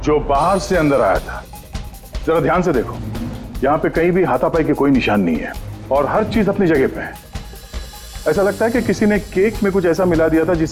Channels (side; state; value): both; identical; correlation 1.00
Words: जो बाहर से अंदर आया था। जरा ध्यान से देखो, यहाँ पे कहीं भी हाथापाई के कोई निशान नहीं है और हर चीज अपनी जगह पे है। ऐसा लगता है कि किसी ने केक में कुछ ऐसा मिला दिया था